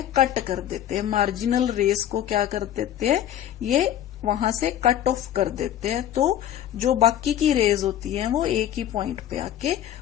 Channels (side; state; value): right; quieter; 11.2 dB